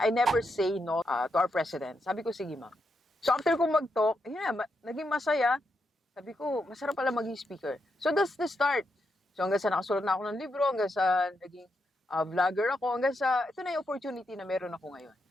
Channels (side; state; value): both; normal; correlation 0.83